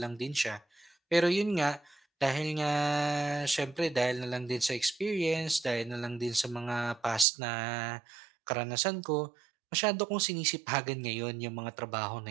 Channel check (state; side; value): drops out; left; at 7.2 s